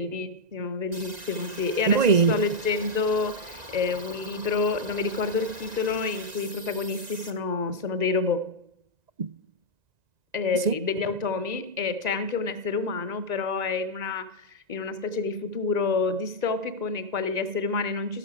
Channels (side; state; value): left; late; 1.9 ms